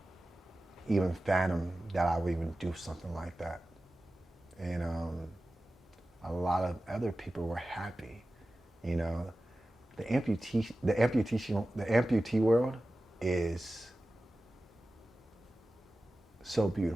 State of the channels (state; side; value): normal; both; correlation 0.95